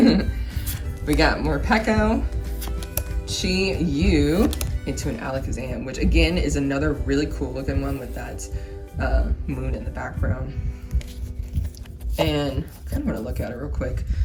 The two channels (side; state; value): both; identical; correlation 1.00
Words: We got more Peko, Chi, Yu, into an Alakazam, which again is another really cool looking one with that moon in the background. And I kind of want to look at it real quick.